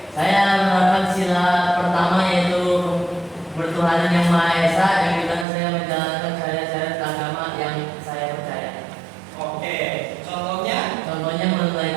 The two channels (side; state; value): left; drops out; at 5.5 s